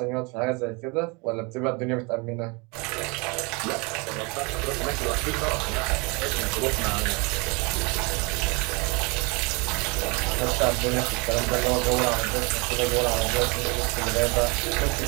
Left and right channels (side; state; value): left; quieter; 29.4 dB